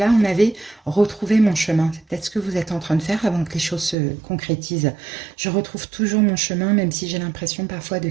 on avait retrouvé mon chemin. C'est peut-être ce que vous êtes en train de faire avant que les choses se concrétisent. Je retrouve toujours mon chemin, même si j'ai l'impression parfois de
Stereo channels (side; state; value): left; drops out; at 4.0 s